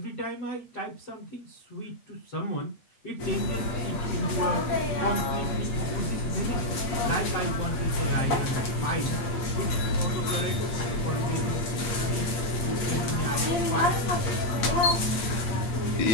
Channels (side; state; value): right; late; 8.5 ms